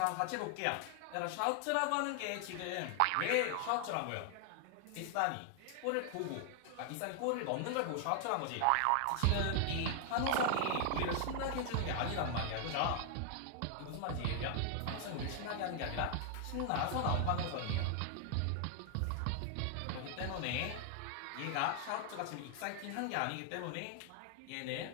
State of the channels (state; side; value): different; both; correlation 0.00